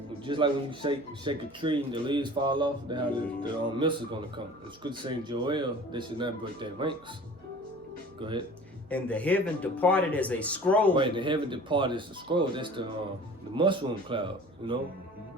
Just like when you shake a tree and the leaves fall off, that's how the missiles gonna come. The scripture saying Joel, they should not break their ranks. Go ahead. and the heaven departed as a scroll. Right, the heaven departed is the scroll. That's the mushroom cloud. Go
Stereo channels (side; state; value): both; normal; correlation 0.44